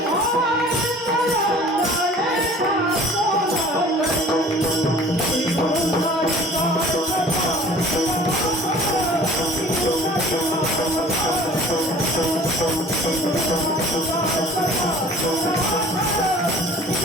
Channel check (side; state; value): both; normal; correlation 0.48